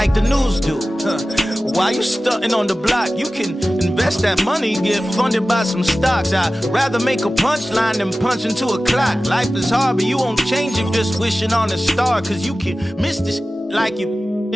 the news do. While you stunting on the block, you can invest that money, get funded by some stocks. I'd rather make a punchline than punch into a clock. Life is hard, but you won't change it just wishing on a star, cause you can miss this like you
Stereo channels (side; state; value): both; normal; correlation 0.96